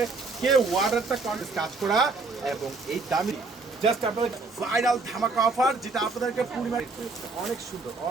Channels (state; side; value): quieter; left; 3.8 dB